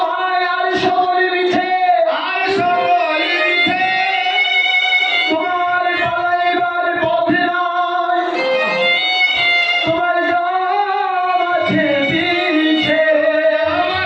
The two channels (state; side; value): identical; both; correlation 1.00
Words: ভাই, আর সকলে মিছে, আর সকলে মিছে, তোমার পালাইবার পথে নাই, তোমার জাম আছে পিছে,